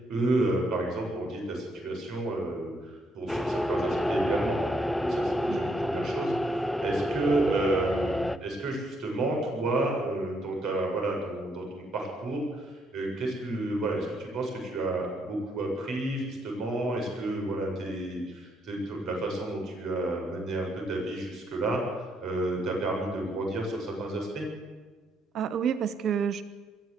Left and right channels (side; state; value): both; normal; correlation 0.74